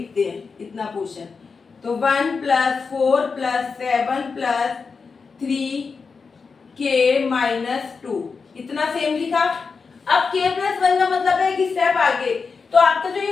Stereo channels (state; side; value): quieter; right; 5.0 dB